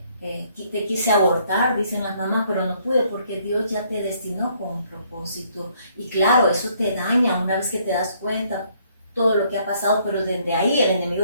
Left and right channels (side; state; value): both; inverted; correlation -0.66